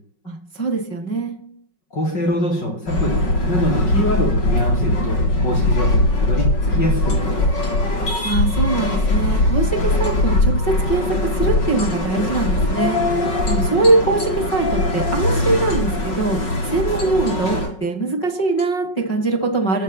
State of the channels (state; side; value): late; right; 5.4 ms